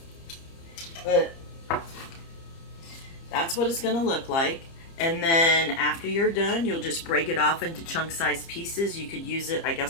But that's what it's going to look like. And then after you're done, you'll just break it off into chunk-sized pieces. You could use it, I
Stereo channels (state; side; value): late; right; 30 ms